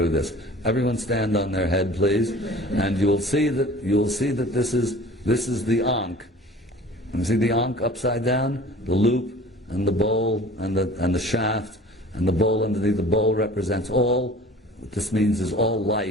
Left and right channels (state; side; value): normal; both; correlation 0.45